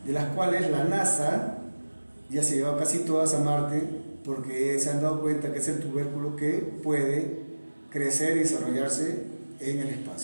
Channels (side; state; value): both; inverted; correlation -1.00